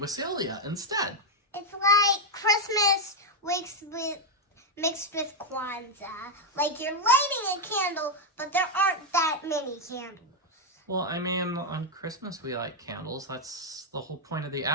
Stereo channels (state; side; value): normal; both; correlation 0.03